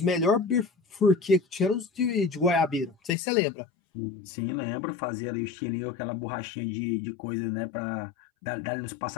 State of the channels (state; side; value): drops out; right; at 3.2 s